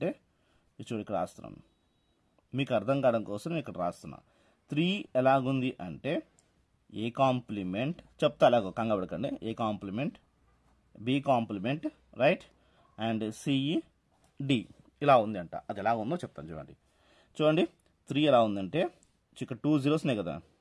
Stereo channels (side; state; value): both; identical; correlation 1.00